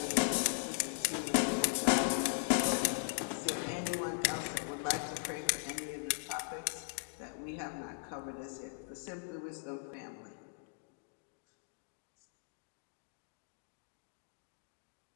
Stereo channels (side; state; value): right; silent; digital silence